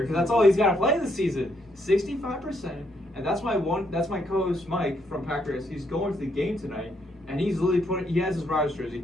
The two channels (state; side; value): normal; both; correlation 0.74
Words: because that's all he's got to play this season. 65%, and that's my co-host Mike from Packers. He's going to the game tonight, and he's literally he has his Rodgers